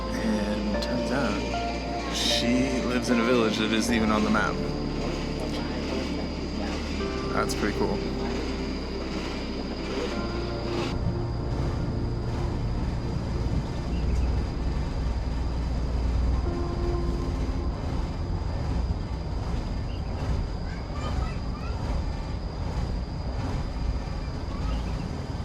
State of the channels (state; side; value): identical; both; correlation 1.00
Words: and turns out she lives in a village that isn't even on the map. That's pretty cool.